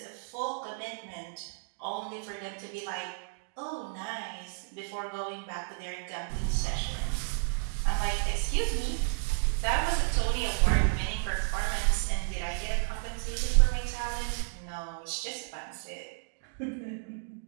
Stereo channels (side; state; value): left; silent; 57 dB below the other